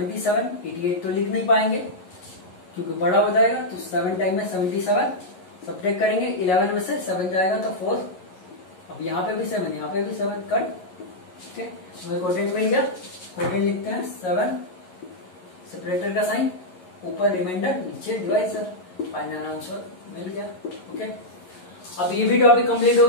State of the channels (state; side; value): late; right; 11 ms